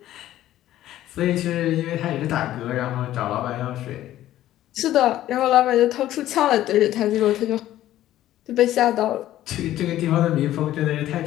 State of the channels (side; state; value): right; quieter; 13.5 dB